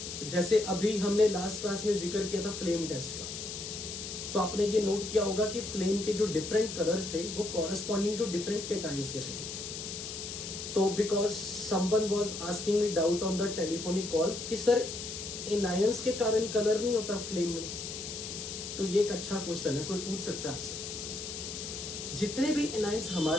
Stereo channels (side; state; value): left; noise; hiss, 7 dB below the sound